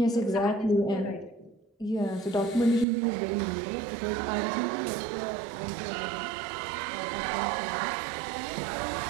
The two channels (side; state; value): left; drops out; at 2.9 s